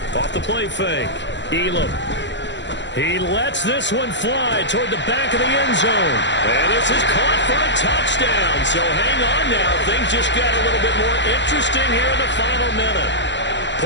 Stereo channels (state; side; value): late; right; 0.52 ms